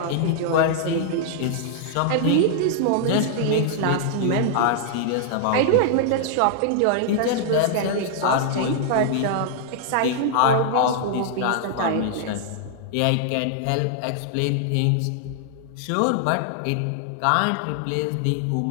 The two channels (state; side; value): different; both; correlation -0.01